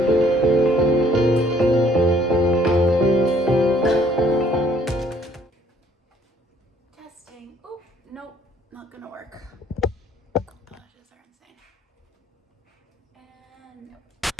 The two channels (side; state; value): both; normal; correlation 0.61